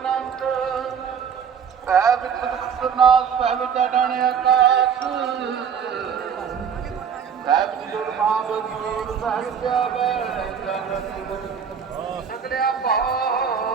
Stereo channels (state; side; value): quieter; left; 7.2 dB